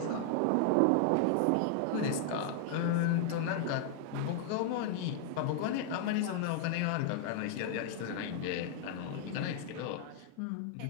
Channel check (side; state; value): both; different; correlation 0.00